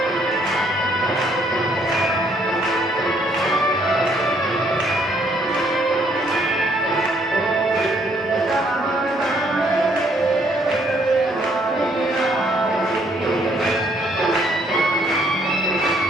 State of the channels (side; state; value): both; normal; correlation 0.67